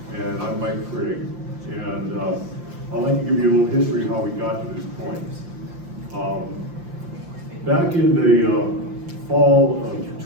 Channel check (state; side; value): late; left; 5.8 ms